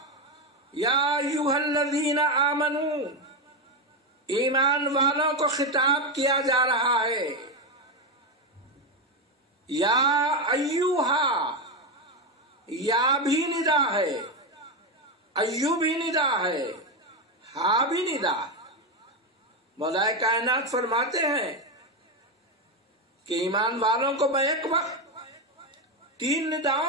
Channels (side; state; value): both; normal; correlation 0.10